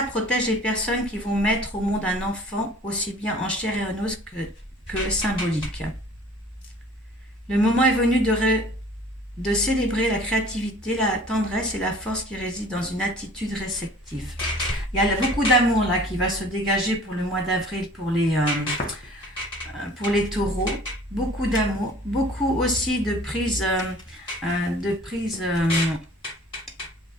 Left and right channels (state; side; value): normal; both; correlation 0.49